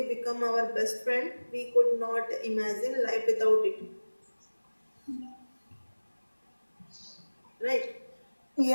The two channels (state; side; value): inverted; both; correlation -1.00